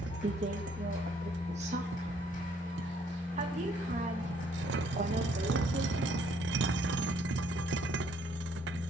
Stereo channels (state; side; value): normal; both; correlation 0.65